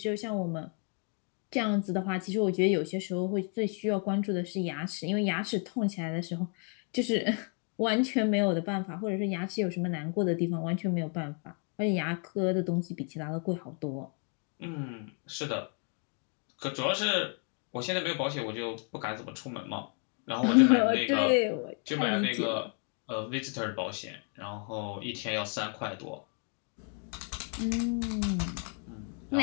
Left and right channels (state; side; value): quieter; right; 39.6 dB